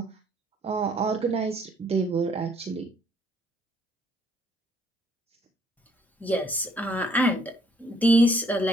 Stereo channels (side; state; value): both; normal; correlation 0.64